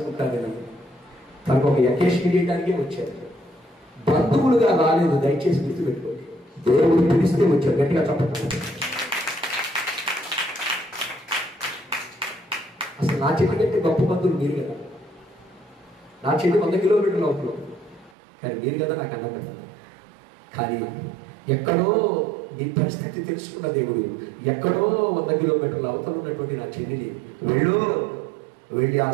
తనకు ఒక అకేషన్ చేయడానికే వచ్చాను. బంధువులుగా రాలేదు, దయచేసి గుర్తుపెట్టుకోండి. దేవుడు పిలిస్తే వచ్చారు. గట్టిగా చెప్పండి. అసలు నా చెట్టు కంటే గొప్ప బంధువులు మీరు కదా. నా చెట్టు 100 కిలోమీటర్లు అవుతుంది, కానీ మీరు కదా నాకు అన్నం పెట్టారు. కానీ ఎక్కడో నీ పరిస్థితి తెలుసుకున్న దేవుడు ఎక్కడో 100 కిలోమీటర్ల అవతల ఉన్నటువంటి నా చెల్లిని వెళ్ళి ఆ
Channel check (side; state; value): left; drops out; at 18.1 s